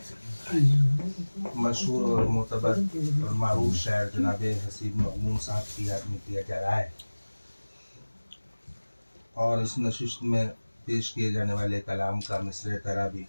मशहूर और मोतबर और मारूफ शायर जनाब हसीब महमूद साहब की याद में किया जा रहा है। और इस नशिस्त में पेश किए जाने वाले कलाम का मिसरे तरा भी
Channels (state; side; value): inverted; both; correlation -1.00